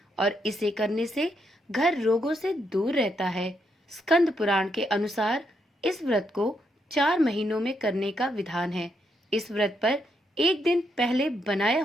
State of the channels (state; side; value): normal; both; correlation 0.78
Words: और इसे करने से घर रोगों से दूर रहता है। स्कंद पुराण के अनुसार इस व्रत को 4 महीनों में करने का विधान है। इस व्रत पर एक दिन पहले बनाया